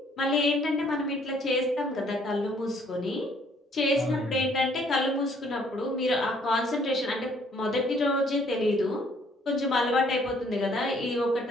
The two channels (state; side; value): normal; both; correlation 0.63